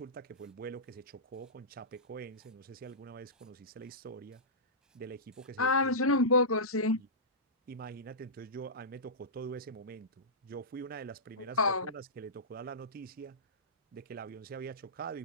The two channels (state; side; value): normal; both; correlation -0.17